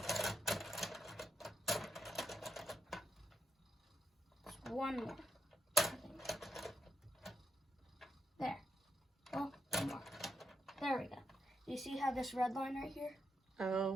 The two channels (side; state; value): both; normal; correlation 0.82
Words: Just one more, I think. There. Oh, one more. There we go. You see how this red line right here?